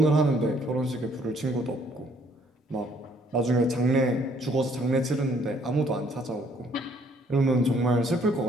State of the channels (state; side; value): normal; both; correlation 0.63